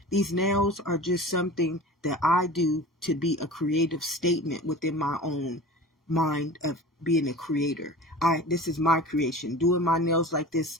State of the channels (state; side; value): normal; both; correlation 0.37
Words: These nails are just something that I do to be a creative statement within my own mind of being a creator. This is my creation. Doing my nails like this